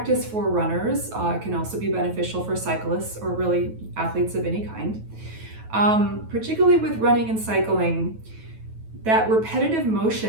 for runners. It can also be beneficial for cyclists or really athletes of any kind. Particularly with running and cycling, that repetitive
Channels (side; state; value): left; late; 9.2 ms